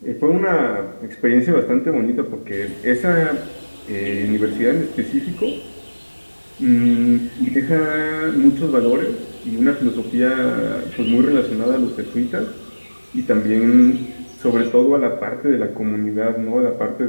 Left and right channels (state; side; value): inverted; both; correlation -1.00